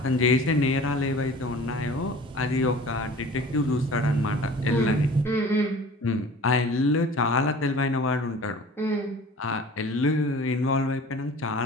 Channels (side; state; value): both; normal; correlation 0.43